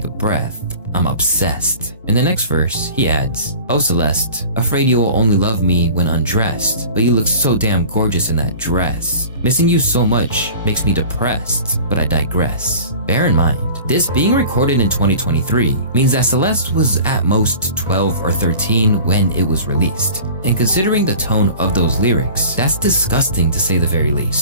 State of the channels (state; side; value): inverted; both; correlation -0.41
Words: a breath. I'm obsessed. In the next verse, he adds, Oh, Celeste, afraid you will only love me when undressed, but you look so damn gorgeous in that dress. Missing you so much makes me depressed, but I digress. Bear in mind, this being recorded in 2023 means that Celeste was at most 12 or 13 when it was released. And considering the tone of those lyrics, that's disgusting to say the very